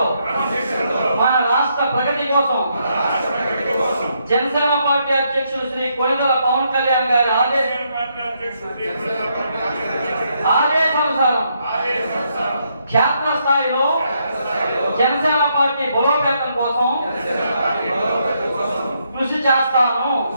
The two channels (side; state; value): both; inverted; correlation -0.76